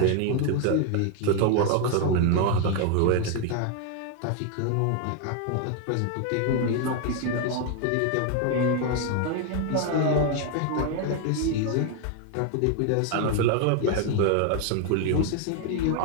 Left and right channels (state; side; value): different; both; correlation 0.01